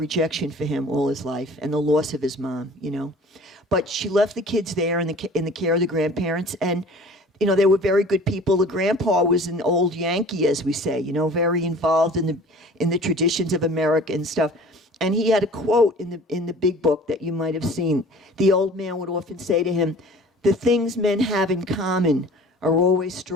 rejection for him all his life and the loss of his mom, But she left the kids there in the care of the grandparents, and they were very good people. The grandpa was an old Yankee, as we say, very involved in the traditions of America and stuff. And he had a quote in the big book that you might have seen. The old man would often say to him, "The things men have in common are always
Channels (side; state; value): both; normal; correlation 0.46